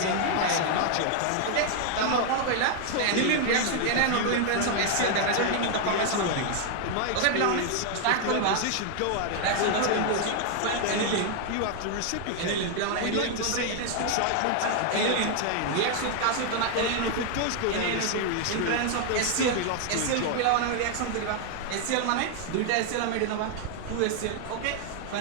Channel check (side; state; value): both; different; correlation 0.00